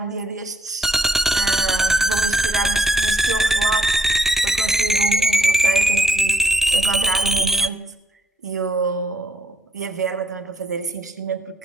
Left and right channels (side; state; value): both; normal; correlation 0.72